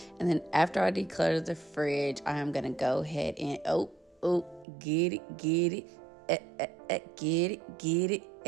And then after I declutter the fridge, I am going to go ahead and, get it, get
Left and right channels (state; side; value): drops out; left; at 4.7 s